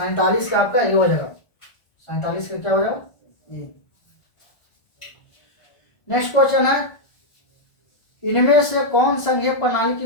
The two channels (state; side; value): late; right; 1.5 ms